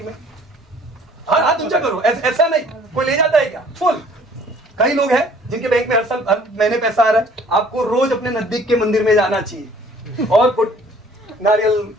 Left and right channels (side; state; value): both; normal; correlation 0.55